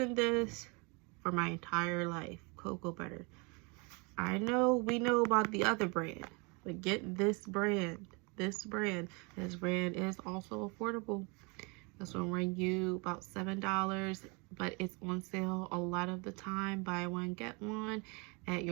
this for my entire life. Cocoa butter. I know we know about the other brand, but get this brand. This brand is also affordable. This will run you about $7, but it's on sale a lot of the time. Buy one, get one at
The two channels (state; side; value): quieter; left; 30.4 dB